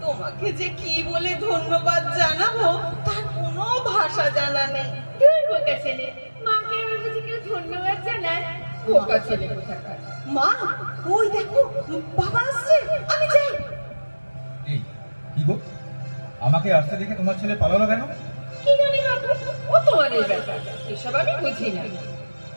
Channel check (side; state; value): both; inverted; correlation -1.00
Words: তোমাকে যে কি বলে ধন্যবাদ জানাবো তার কোনো ভাষা জানা নেই। তুই বোকা ছেলে, মাকে আমার কাছে কেউ ধন্যবাদ জানায়? বোকা ছেলে কোথাকার। মা, ওই দেখো বাবা আসছে, আমি যাই। এই কি গো, আমাকে আসতে দেখে তোমার ছেলে পালালো কেন? কি জানি বাবু, ও তোমাদের ব্যাপার, এসব আমি বুঝি না।